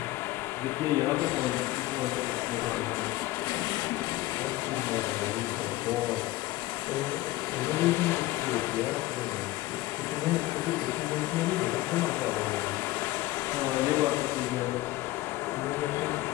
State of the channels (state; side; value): quieter; right; 17.5 dB